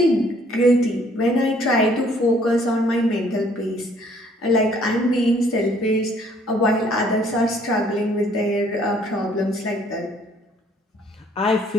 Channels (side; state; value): both; normal; correlation 0.61